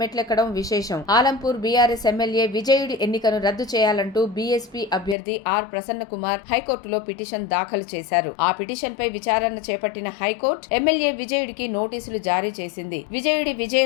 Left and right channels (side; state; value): right; drops out; at 5.2 s